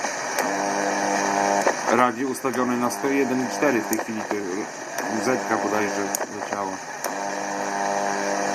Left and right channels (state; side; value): identical; both; correlation 1.00